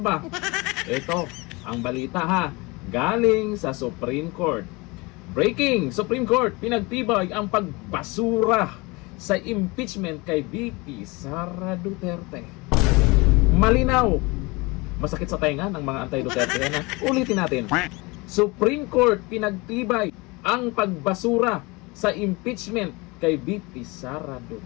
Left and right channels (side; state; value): right; quieter; 25.2 dB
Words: Ito, ang balita ha, galing sa Supreme Court. Breaking! Supreme Court, pinagtibay ang pagbasura sa impeachment kay BP Sara Duterte. Malinaw! Masakit sa tenga ng mga anti-Duterte yan ha. Ulitin natin. Supreme Court, pinagtibay ang pagbasura sa impeachment kay BP Sara